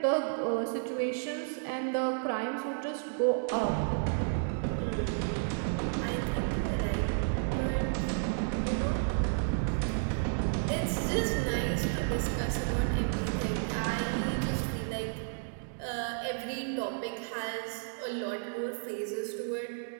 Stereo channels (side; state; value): left; silent; digital silence